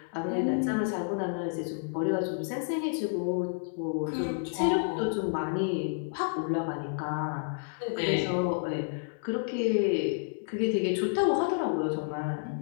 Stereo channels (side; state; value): right; silent; 58 dB below the other